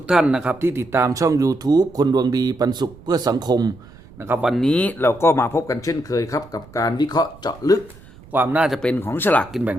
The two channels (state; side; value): noise; right; rumble, 22 dB below the sound